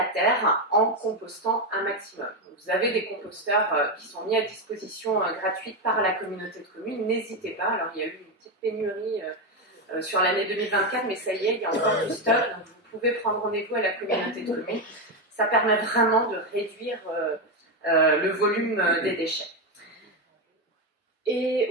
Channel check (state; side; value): normal; both; correlation 0.09